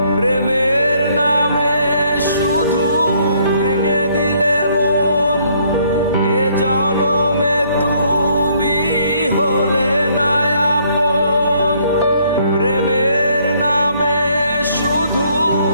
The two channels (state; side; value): inverted; both; correlation -0.66